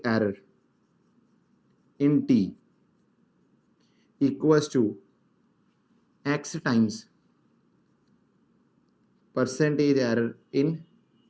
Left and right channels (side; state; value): both; identical; correlation 1.00